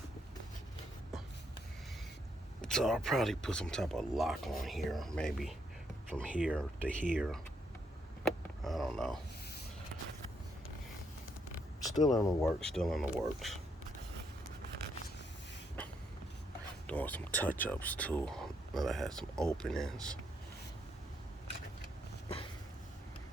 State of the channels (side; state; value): both; normal; correlation 0.75